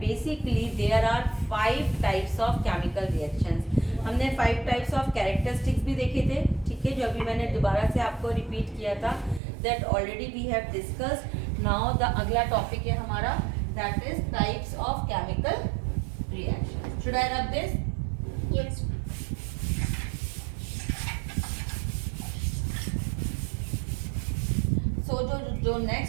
Basically there are 5 types of chemical reactions. हमने 5 टाइप्स ऑफ कैरेक्टरिस्टिक्स भी देखे थे, ठीक है, जो अभी मैंने दोबारा से आपको रिपीट किया था, that already we have discussed. Now the अगला टॉपिक है हमारा, that is types of chemical reaction. Should I rub this? Yes. So जो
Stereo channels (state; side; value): drops out; left; at 9.4 s